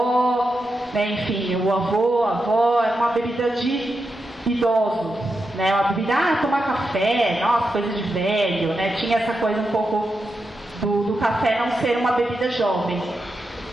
né? Enfim, o avô, a avó, é uma bebida de idoso, né? Uma bebida, tomar café, nossa, coisa de velho, né? Tinha essa coisa um pouco do café não ser uma bebida jovem.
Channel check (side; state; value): both; normal; correlation 0.87